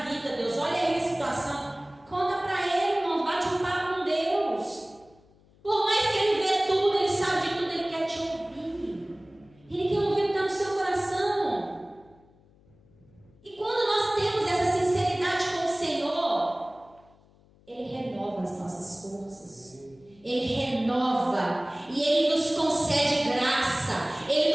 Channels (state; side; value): noise; left; hum, 29 dB below the sound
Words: vida, Deus. Olha aí a situação. Conta para ele, irmão. Bate um papo com Deus. Por mais que ele vê tudo, ele sabe de tudo, ele quer te ouvir. Ele quer ouvir o que está no seu coração. E quando nós temos essa sinceridade com o Senhor, Ele renova as nossas forças. Ele renova. E Ele nos concede graça.